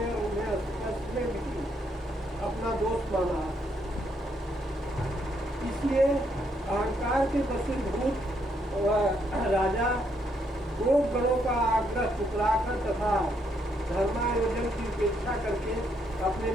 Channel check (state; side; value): normal; both; correlation 0.74